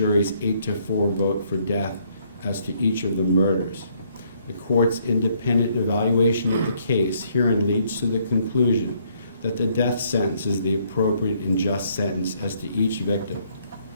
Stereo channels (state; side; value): inverted; both; correlation -0.68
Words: 8-4 vote for death as to each of the murders. The court's independent evaluation of the case herein leads to the conclusion that the death sentence is the appropriate and just sentence as to each victim.